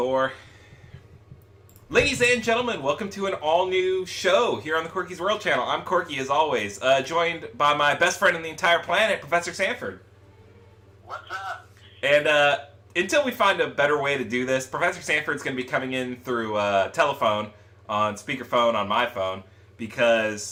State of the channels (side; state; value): both; identical; correlation 1.00